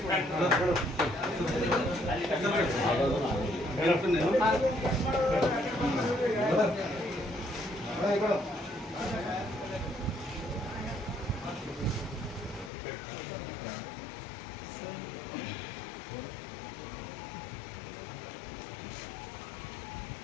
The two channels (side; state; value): right; drops out; at 12.7 s